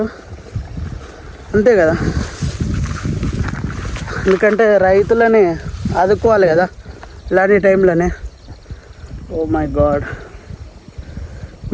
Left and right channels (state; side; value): identical; both; correlation 1.00